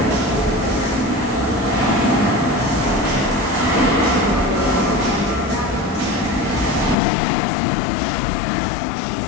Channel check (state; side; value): drops out; right; at 7.0 s